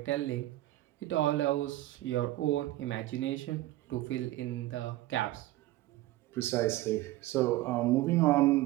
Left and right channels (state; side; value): quieter; left; 16.4 dB